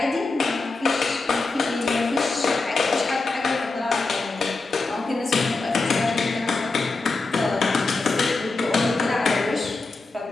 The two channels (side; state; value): right; quieter; 3.6 dB